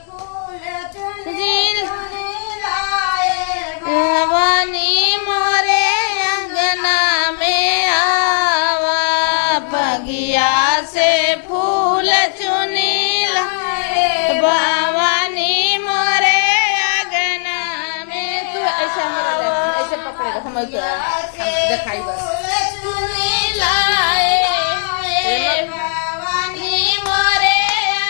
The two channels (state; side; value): silent; right; 68 dB below the other